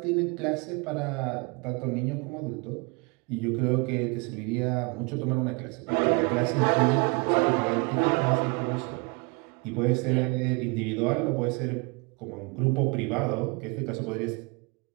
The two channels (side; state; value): left; quieter; 29.8 dB